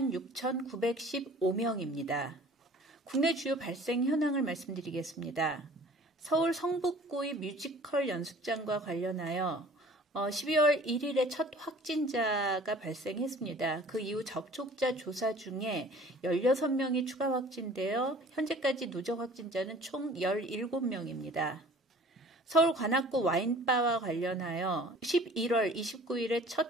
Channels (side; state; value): both; normal; correlation 0.49